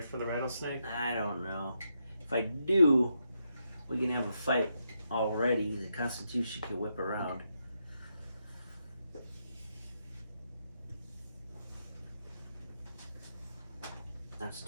for the rattlesnake? I don't know. If I do, we can have a fight already. The Constitution can whip around. That's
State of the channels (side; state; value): both; inverted; correlation -0.82